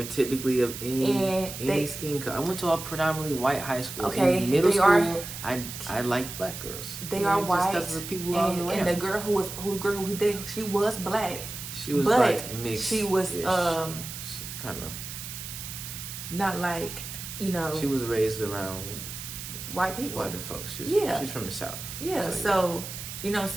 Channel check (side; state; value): right; noise; hiss, 9 dB below the sound